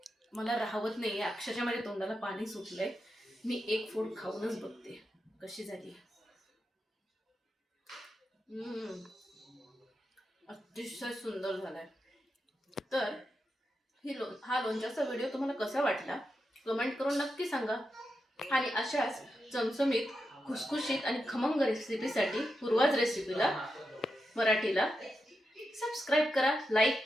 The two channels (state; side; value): normal; both; correlation 0.87